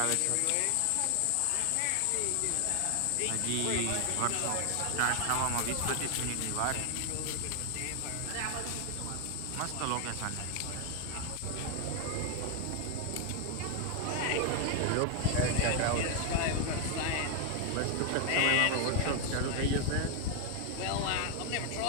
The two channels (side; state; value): both; different; correlation 0.01